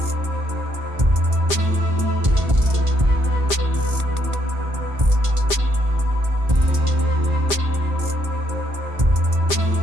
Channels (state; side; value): late; left; 1.5 ms